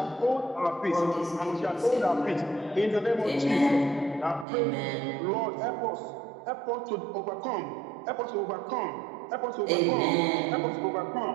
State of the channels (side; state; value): left; drops out; at 4.5 s